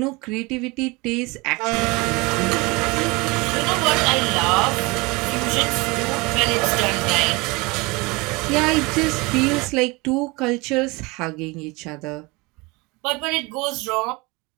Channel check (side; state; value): left; quieter; 25.2 dB